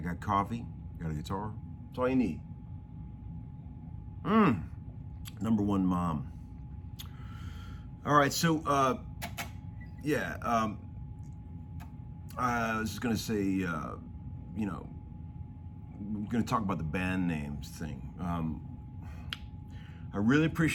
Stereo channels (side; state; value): both; identical; correlation 1.00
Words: got coffee, got a guitar. That's all you need. Number one mom. All right, so, I was just gonna say, you know, I'm gonna talk about the band names thing. I really